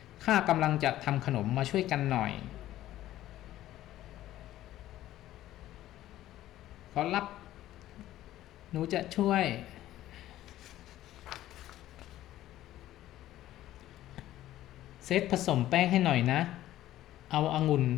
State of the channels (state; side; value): quieter; right; 14.0 dB